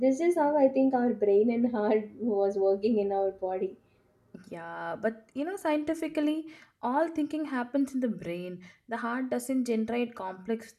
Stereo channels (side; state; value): both; identical; correlation 1.00